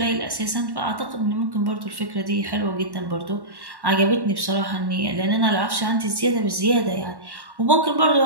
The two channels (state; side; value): late; left; 1.1 ms